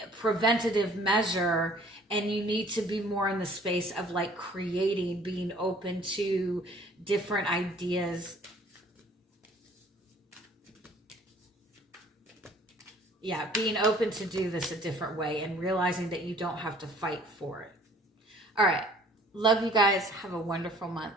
preventative measure, and you need to be more in the space of like creating, being open to different ideas. Yeah, being open to do this a different way and realizing that you don't have to fight for it. All right. Love you guys. Have a wonderful month.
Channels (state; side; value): normal; both; correlation 0.55